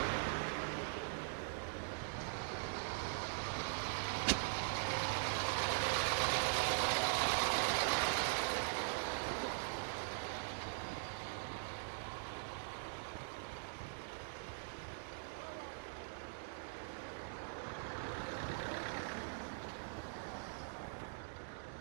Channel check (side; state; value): left; silent; digital silence